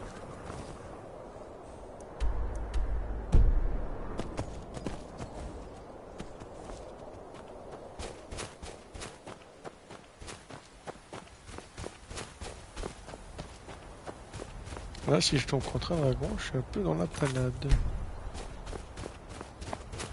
Là, si je tombe contre un dragon, je suis un peu dans la panade.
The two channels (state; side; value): identical; both; correlation 1.00